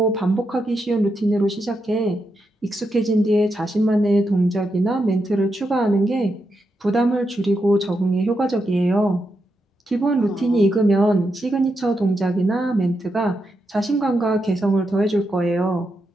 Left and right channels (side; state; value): both; normal; correlation 0.84